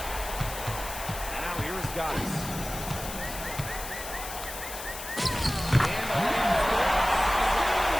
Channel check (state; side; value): noise; left; hiss, 9 dB below the sound